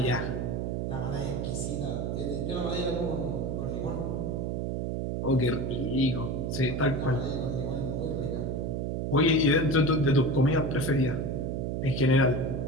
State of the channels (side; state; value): right; noise; hum, 1 dB below the sound